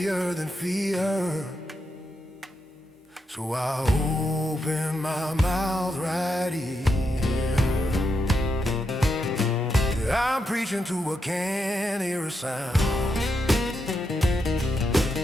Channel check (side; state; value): both; normal; correlation 0.83